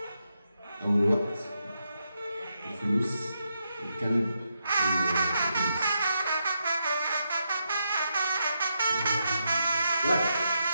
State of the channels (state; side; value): inverted; both; correlation -0.83